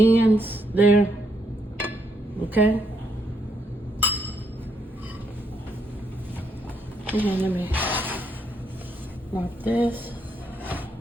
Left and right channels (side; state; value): both; normal; correlation 0.76